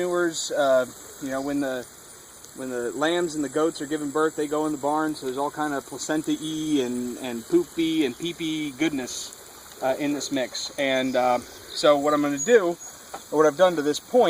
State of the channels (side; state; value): both; identical; correlation 1.00